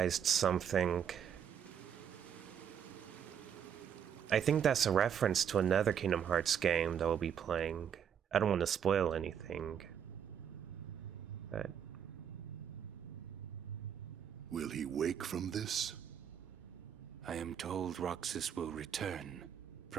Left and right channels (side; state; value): left; quieter; 8.4 dB